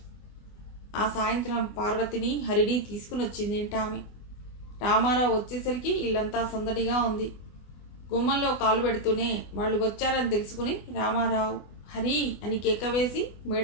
ఆ సాయంత్రం పార్వతిని హరిని తీసుకుని వచ్చిందేంటామె. రామారావు వచ్చేసరికి ఇల్లంతా సందడిగా ఉంది. గుమ్మంలో కాలు పెడుతూనే వాళ్ళు వచ్చారని తెలుసుకుని రామారావు హరి అని కేక వేసి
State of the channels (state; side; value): late; right; 24 ms